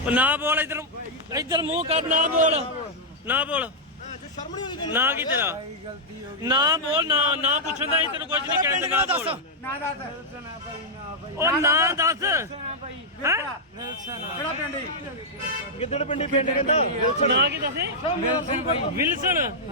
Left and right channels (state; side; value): normal; both; correlation -0.06